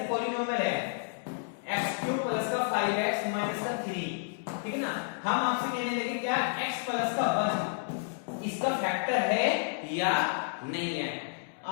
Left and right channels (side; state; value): right; silent; digital silence